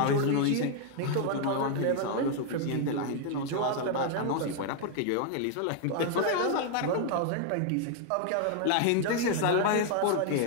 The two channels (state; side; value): different; both; correlation 0.00